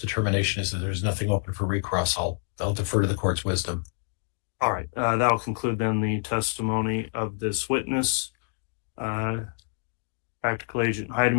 is that there's nothing open for recross, I'll defer to the court's wisdom. All right. That'll conclude then the testimony of this witness. Practical Agent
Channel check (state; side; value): silent; right; digital silence